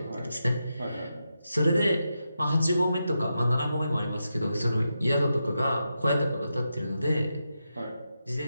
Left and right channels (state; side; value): inverted; both; correlation -0.87